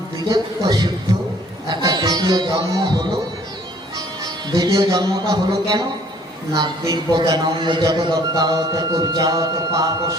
দ্বিজত্ব সিদ্ধ, একটা দ্বিতীয় জন্ম হলো। দ্বিতীয় জন্মটা হলো কেন না? দিব্য জ্ঞানম জগদ্দাত কুর্জাত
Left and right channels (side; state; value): both; normal; correlation 0.57